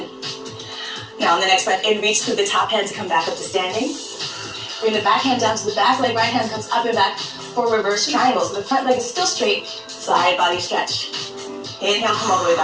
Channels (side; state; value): both; identical; correlation 1.00